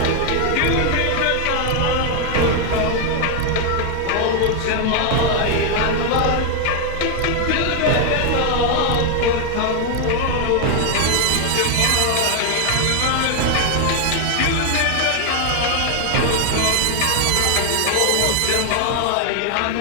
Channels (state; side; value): different; both; correlation 0.00